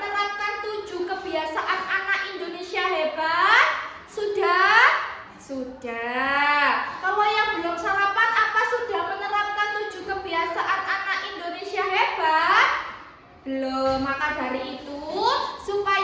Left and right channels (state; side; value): identical; both; correlation 1.00